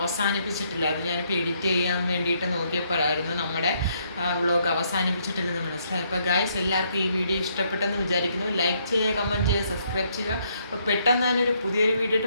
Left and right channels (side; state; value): both; inverted; correlation -0.72